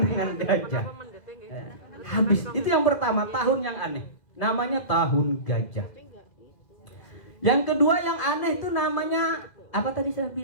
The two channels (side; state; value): right; late; 2.0 ms